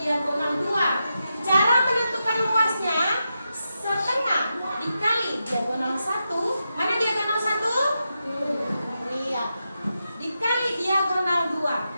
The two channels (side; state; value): both; inverted; correlation -0.88